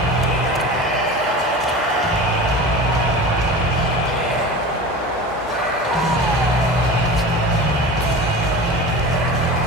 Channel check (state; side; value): normal; both; correlation 0.32